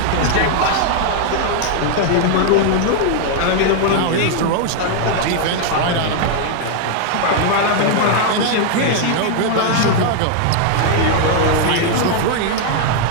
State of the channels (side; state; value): both; different; correlation 0.00